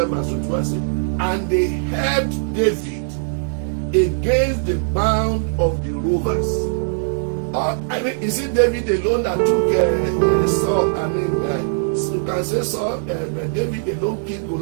verse 21 says, and they helped David against the band of the rovers. Is it David alone that took Saul? You can say Saul, David alone killed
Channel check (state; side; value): silent; left; 66 dB below the other